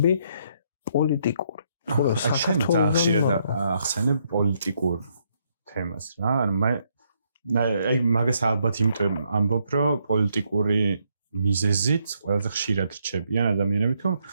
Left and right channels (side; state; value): both; inverted; correlation -0.74